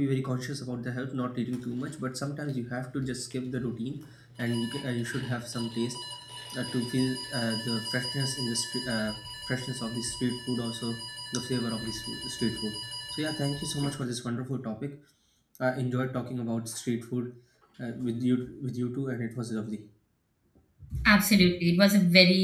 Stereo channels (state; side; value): identical; both; correlation 1.00